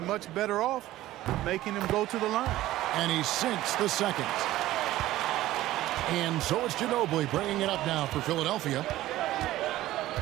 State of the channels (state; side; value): quieter; left; 15.4 dB